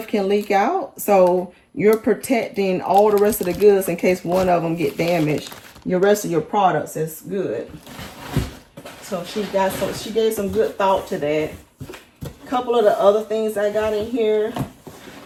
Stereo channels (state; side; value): identical; both; correlation 1.00